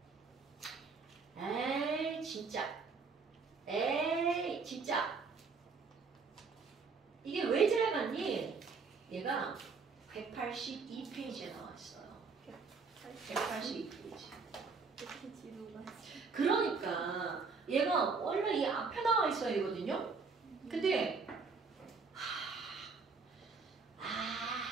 에이, 진짜. 이게 왜 지나갔니? 얘가 182페이지에 나와 있어요. 182페이지. 이렇게 지루가. 그러니까 얘가 원래 이 앞에 나와 있어야 되거든요. 근데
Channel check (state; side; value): quieter; left; 4.7 dB